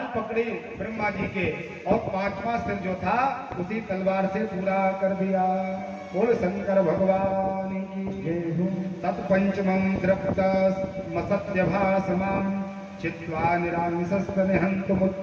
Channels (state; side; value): identical; both; correlation 1.00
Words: पकड़ी ब्रह्मा जी के और 5वां सिर जो था उसी तलवार से पूरा कर दिया। बोल शंकर भगवान की जय हो। तत्पंचमं द्रप्त मसत्य भासमान चित्वा निरांशस्त निहंत